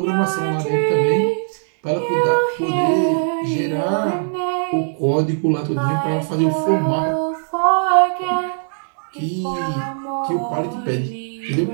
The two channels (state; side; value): silent; left; digital silence